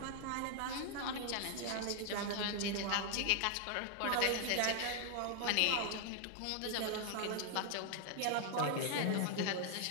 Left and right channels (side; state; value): both; different; correlation 0.00